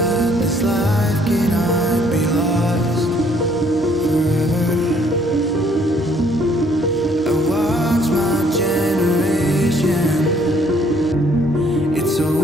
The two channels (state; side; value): normal; both; correlation 0.64